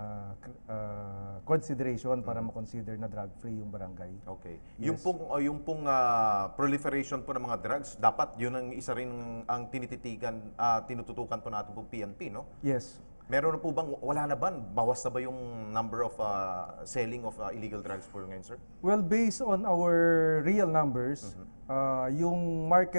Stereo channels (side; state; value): both; inverted; correlation -1.00